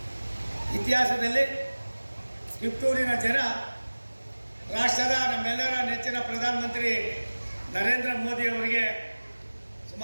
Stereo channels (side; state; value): both; inverted; correlation -1.00